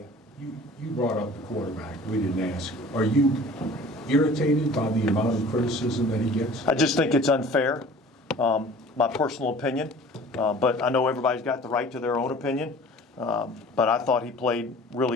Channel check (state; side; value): normal; both; correlation 0.46